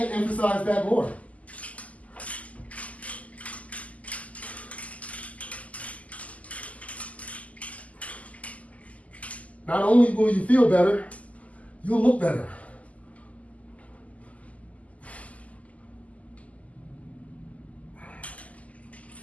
emphasize that more. Not only will you feel better, you'll look better.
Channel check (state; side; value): late; right; 0.071 ms